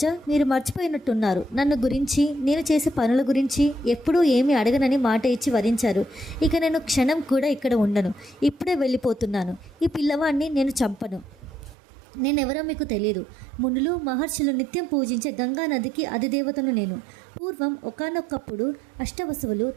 మీరు మర్చిపోయినట్టున్నారు. నన్ను గురించి, నేను చేసే పనుల గురించి ఎప్పుడూ ఏమీ అడగనని మాట ఇచ్చి వరించారు. ఇక నేను క్షణం కూడా ఇక్కడ ఉండను. ఇప్పుడే వెళ్ళిపోతున్నాను. ఈ పిల్లవాడిని నేను చంపను. నేనెవరో మీకు తెలియదు. మునులు, మహర్షులు నిత్యం పూజించే గంగా నదికి అధిదేవతను నేను. పూర్వం ఒకానొకప్పుడు అష్టవసువులు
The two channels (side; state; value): left; drops out; at 11.8 s